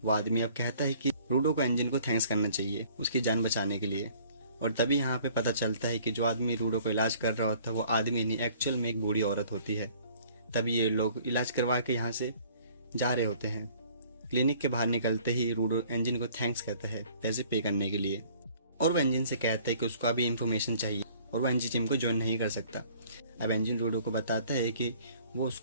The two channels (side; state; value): both; inverted; correlation -0.55